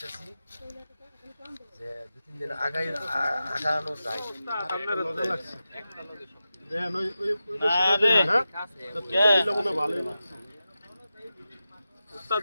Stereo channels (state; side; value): inverted; both; correlation -0.92